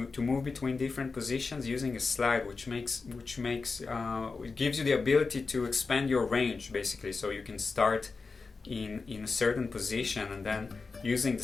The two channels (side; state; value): right; quieter; 4.3 dB